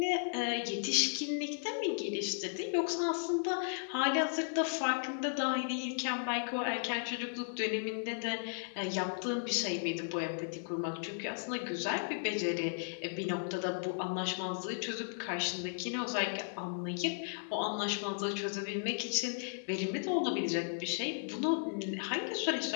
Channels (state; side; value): silent; right; digital silence